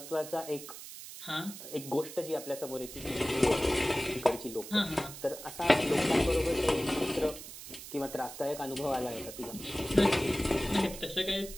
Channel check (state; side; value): noise; right; hiss, 12 dB below the sound